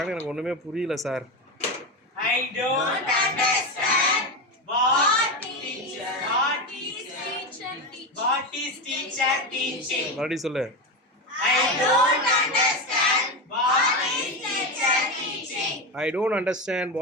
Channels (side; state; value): both; normal; correlation 0.16